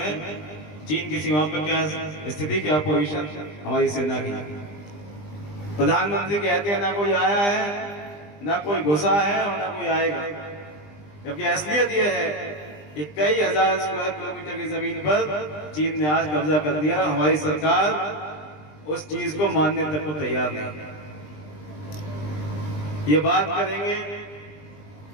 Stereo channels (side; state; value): right; late; 20 ms